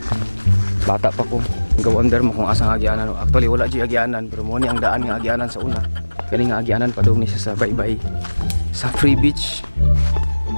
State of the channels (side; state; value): both; inverted; correlation -1.00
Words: Bata pa ko. Ga-wonder mo kung asang agianan. Actually wala di agianan, pero mo ni ang daan nga agianan sa una. Kaning nga agianan padung ni siya sa Baybay. Sa Free Beach.